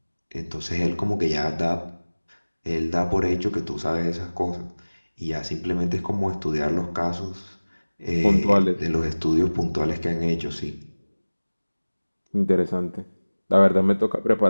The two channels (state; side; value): inverted; both; correlation -1.00